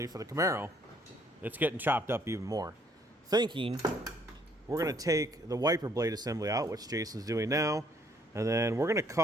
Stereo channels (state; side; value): normal; both; correlation 0.65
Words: for the Camaro, it's getting chopped up even more. Thinking we're going to take the wiper blade assembly out, which Jason's doing now, and then we're going to